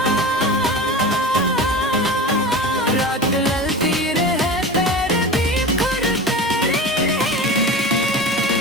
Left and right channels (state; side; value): normal; both; correlation 0.30